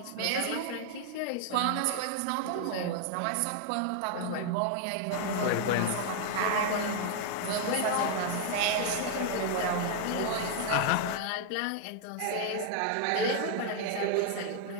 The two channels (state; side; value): different; both; correlation 0.00